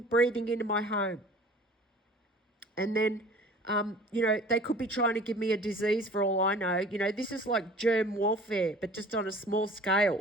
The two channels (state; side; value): normal; both; correlation 0.46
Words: breathing into my home. And then, they could be trying to give me a disease for all I know. This is like germ warfare, but just on a small